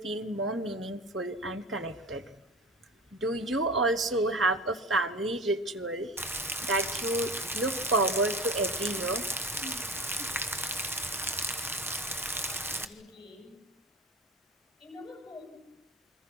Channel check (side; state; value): both; normal; correlation 0.34